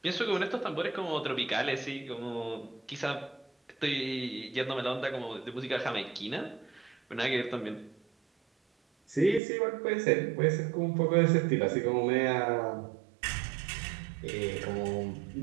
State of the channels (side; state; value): left; drops out; at 9.4 s